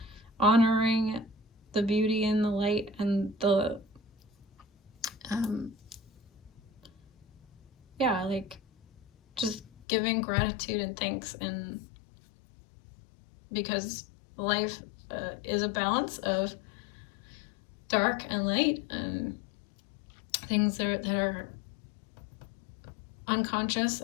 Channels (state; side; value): drops out; right; at 9.9 s